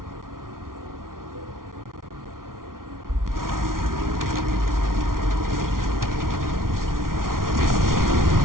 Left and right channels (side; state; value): left; late; 0.92 ms